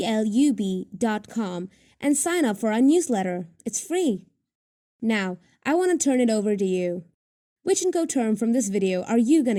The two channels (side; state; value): both; identical; correlation 1.00